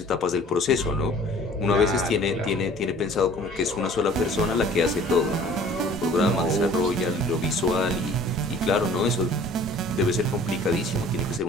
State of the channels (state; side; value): normal; both; correlation 0.50